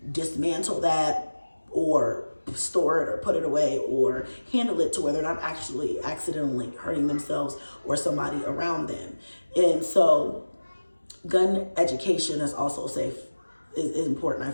dismantle that or store it or put it away or handle it to where they're not actually accidentally hurting themselves or somebody around them. And so gun education is also is important, I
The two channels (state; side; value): inverted; both; correlation -1.00